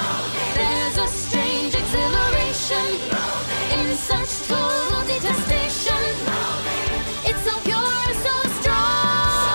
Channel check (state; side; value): inverted; both; correlation -1.00